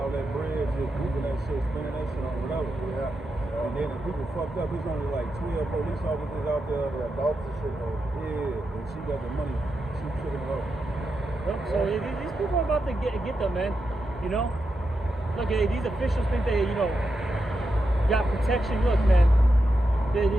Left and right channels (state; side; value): normal; both; correlation 0.87